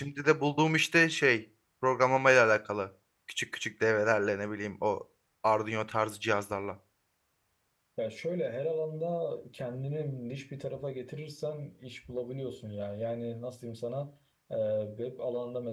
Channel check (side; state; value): both; identical; correlation 1.00